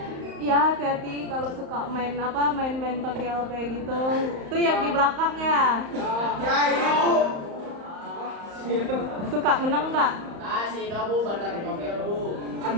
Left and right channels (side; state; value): left; late; 35 ms